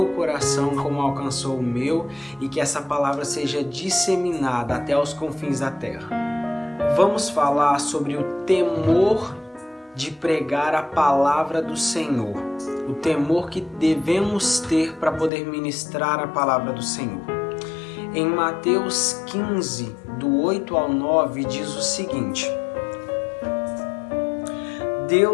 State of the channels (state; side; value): drops out; right; at 15.3 s